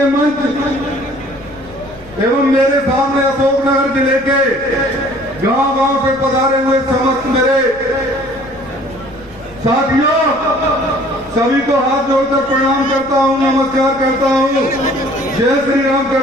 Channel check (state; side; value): noise; left; rumble, 23 dB below the sound